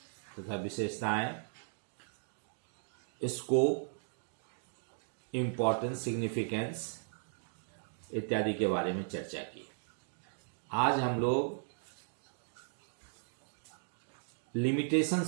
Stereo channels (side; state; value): left; silent; digital silence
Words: तथा विशेषताएं, स्कोप, इम्पोर्टेंस, सिग्निफिकेंस इत्यादि के बारे में चर्चा की। आज हम लोग